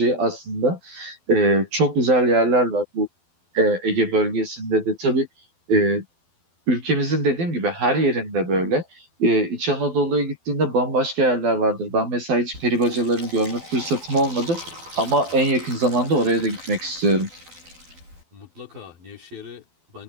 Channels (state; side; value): late; left; 12 ms